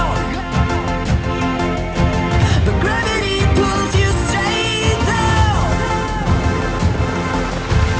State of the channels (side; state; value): both; identical; correlation 1.00